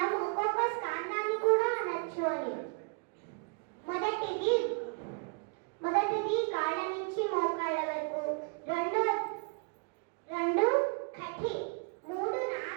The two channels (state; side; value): quieter; left; 36.7 dB